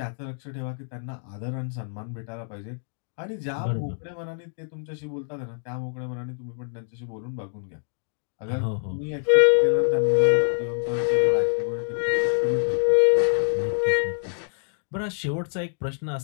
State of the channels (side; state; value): right; silent; digital silence